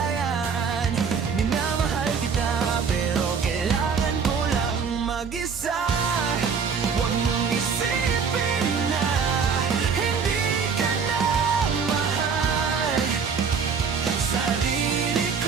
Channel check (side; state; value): left; quieter; 6.0 dB